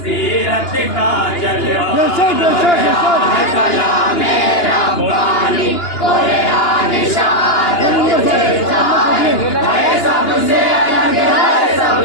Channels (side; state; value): right; late; 2.9 ms